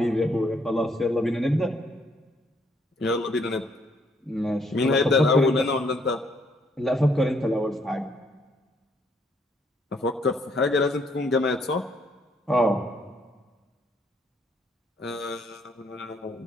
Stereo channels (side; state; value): both; normal; correlation 0.69